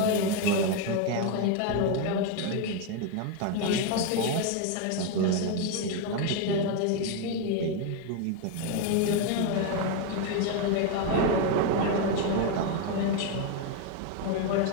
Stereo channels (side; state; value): both; different; correlation 0.02